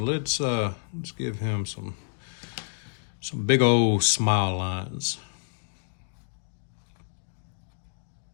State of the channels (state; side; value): silent; right; digital silence